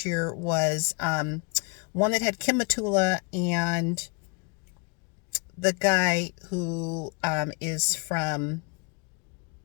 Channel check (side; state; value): right; quieter; 30.3 dB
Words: year was one that had Kim Matula and the guy who is from